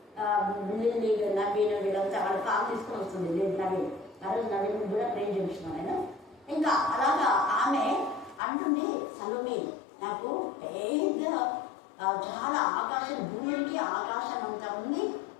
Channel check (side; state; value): right; drops out; at 8.4 s